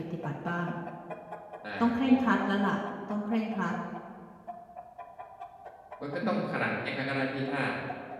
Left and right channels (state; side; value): identical; both; correlation 1.00